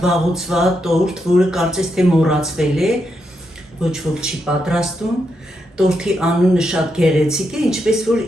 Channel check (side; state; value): both; normal; correlation 0.82